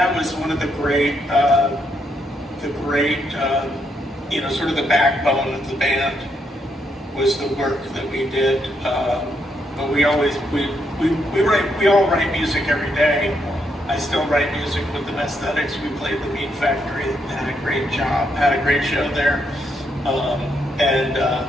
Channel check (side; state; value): both; normal; correlation 0.77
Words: was one of the great, sort of the backbone of the band was the work that we did. But we all write music every day. I still write music with the Aesthetics. We played the MeetFactory, had a great job, had a great show there.